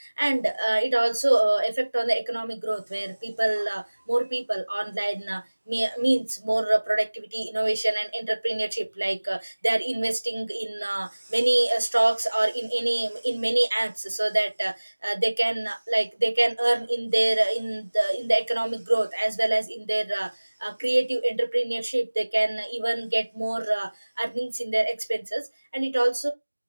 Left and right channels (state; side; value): inverted; both; correlation -1.00